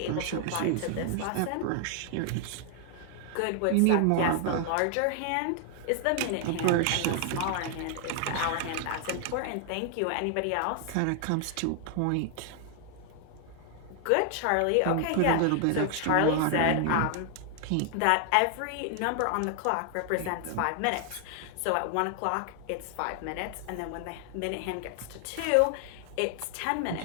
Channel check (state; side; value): different; both; correlation 0.00